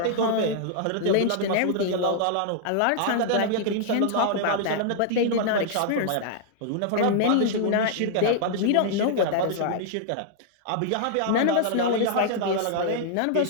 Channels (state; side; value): different; both; correlation -0.01